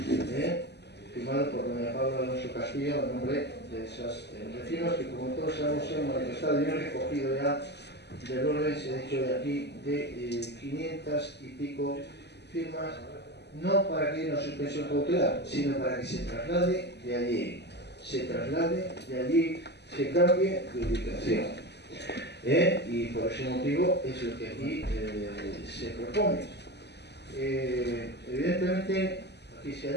firmado por doña Paula Alonso Castillo, en nombre de esos vecinos que, como todos sabemos, se han manifestado y han recogido ya del orden, se ha dicho de aquí, de 500 y pico firmas, no para que haya una suspensión cautelar, sino para que se traslade de allí, se cambie de ubicación. Y por ese motivo es lo que aquí se propone. Evidentemente, aquí se ha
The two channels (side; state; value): right; late; 0.49 ms